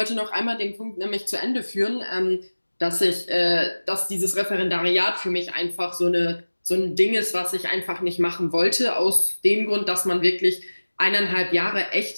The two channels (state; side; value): inverted; both; correlation -1.00